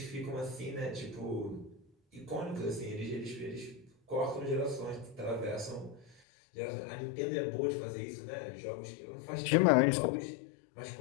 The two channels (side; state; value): right; drops out; at 6.2 s